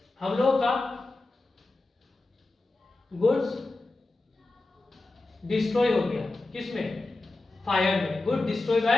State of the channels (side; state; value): right; quieter; 3.1 dB